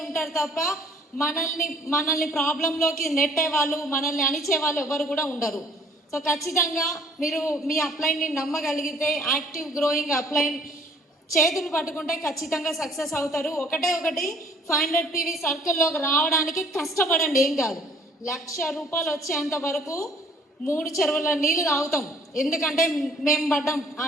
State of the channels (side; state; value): both; normal; correlation 0.58